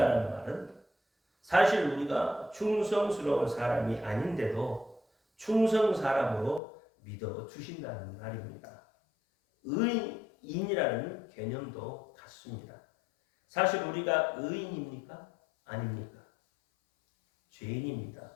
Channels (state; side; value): drops out; right; at 6.6 s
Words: 말은 사실 우리가 충성스러운 사람이 아닌데도 충성 사람으로 믿어주신다는 말입니다. 의인이라는 개념도 같습니다. 사실 우리가 의인입니까? 아닙니까? 죄인입니다.